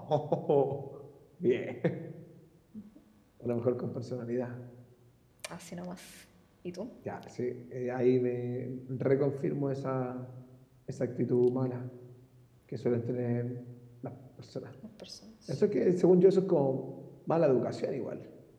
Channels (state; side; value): identical; both; correlation 1.00